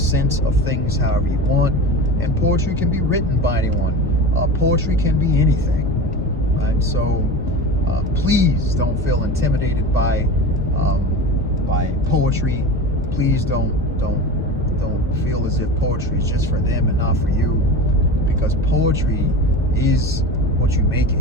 of things however you want, and poetry can be written by anyone. Poetry can be anything, right? So please don't feel intimidated by poetry. Please don't feel as if poetry is just for them and not for you, because poetry is what you make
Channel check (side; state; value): both; normal; correlation 0.30